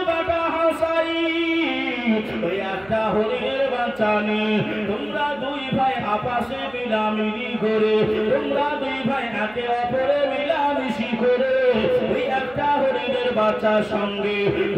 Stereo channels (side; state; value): right; noise; hum, 25 dB below the sound